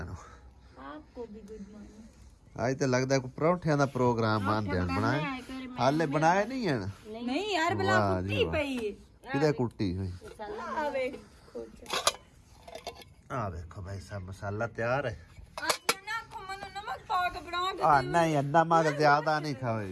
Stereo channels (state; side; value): identical; both; correlation 1.00